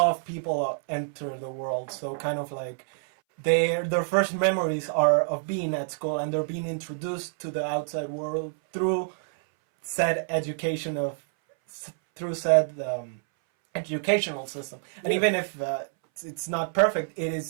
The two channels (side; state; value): left; silent; 60 dB below the other